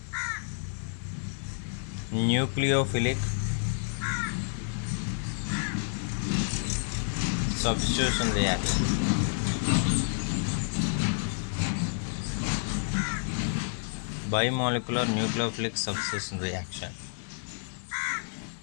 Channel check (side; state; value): right; silent; digital silence